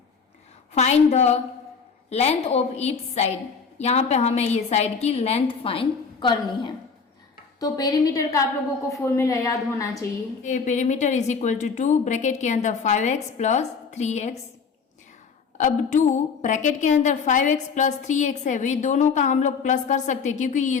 Find the length of each side, यहाँ पे हमें ये साइड की लेंथ फाइंड करनी है। तो पेरीमीटर का आप लोगों को फॉर्मूला याद होना चाहिए, perimeter is equal to 2 bracket के अंदर 5x प्लस 3x। अब 2 ब्रैकेट के अंदर 5x प्लस 3x है, वे दोनों का हम लोग प्लस कर सकते हैं क्योंकि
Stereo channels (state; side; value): quieter; right; 5.5 dB